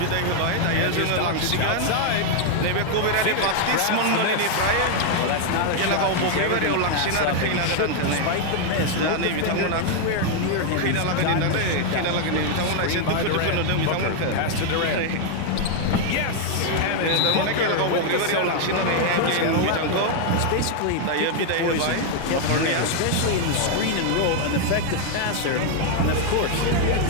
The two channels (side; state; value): both; different; correlation 0.00